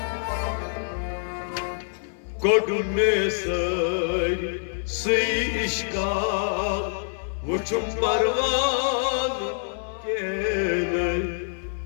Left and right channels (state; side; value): silent; right; 59 dB below the other